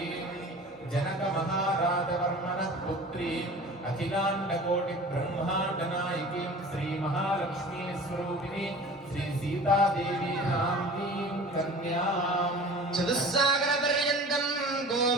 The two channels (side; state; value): both; normal; correlation 0.41